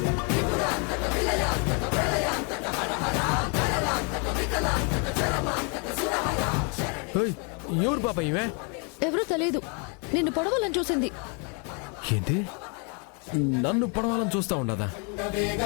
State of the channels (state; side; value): quieter; right; 36.0 dB